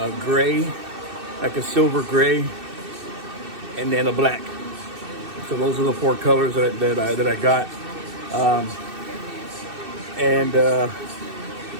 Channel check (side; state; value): left; late; 2.6 ms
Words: gray, like a silver gray, and then a black. So those are the 4 colors that I got. And